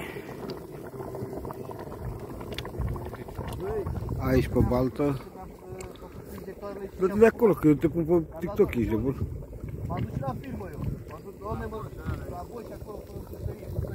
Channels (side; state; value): both; identical; correlation 1.00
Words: Aici pe baltă. Dă-te de acolo, că eu te pun pe TikTok, ești de bun. M-am dus la filmă eu. M-am dus, doamne, mă, la voi și acolo, fără puterie.